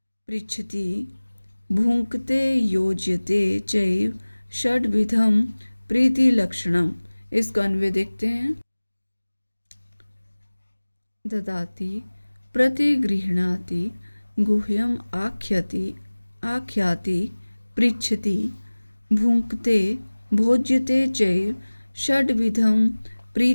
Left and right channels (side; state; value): both; inverted; correlation -1.00